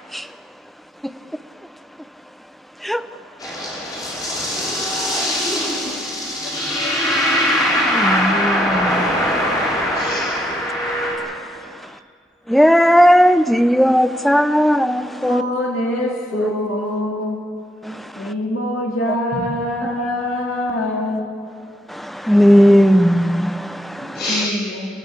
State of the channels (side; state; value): both; normal; correlation 0.79